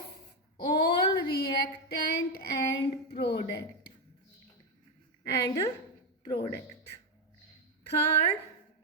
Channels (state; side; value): normal; both; correlation 0.07